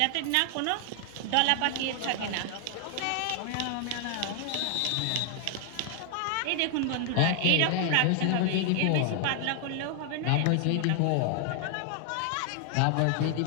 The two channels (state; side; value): different; both; correlation 0.00